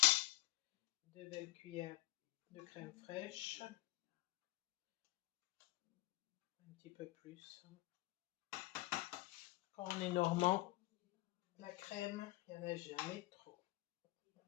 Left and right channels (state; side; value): quieter; right; 18.7 dB